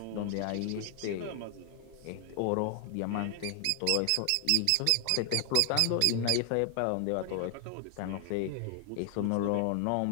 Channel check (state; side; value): different; both; correlation 0.00